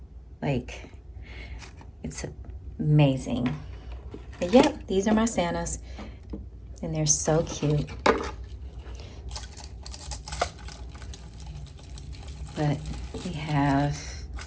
Like, it's amazing. But yep, these are my Santas. And they're so cute. But we have,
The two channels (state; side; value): identical; both; correlation 1.00